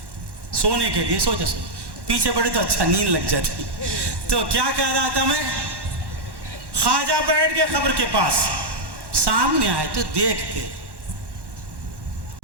سونے کے لیے، سوچا پیچھے بیٹھے تو اچھا نیند لگ جاتی۔ تو کیا کہہ رہا تھا میں؟ خواجہ بیٹھ گئے قبر کے پاس، سامنے آئے تو دیکھتے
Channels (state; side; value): late; left; 1.1 ms